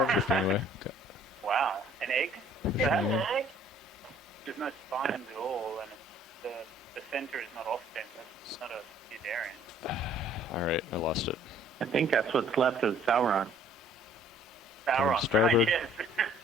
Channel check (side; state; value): both; normal; correlation 0.57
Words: me. Okay. Wow, an egg? It's an egg. There's no spines at all, and the center is not off-center. It's not a Eudarian. All right, I lost it. I think that's what's left of Sauron. Sauron, Starboard. right, yes.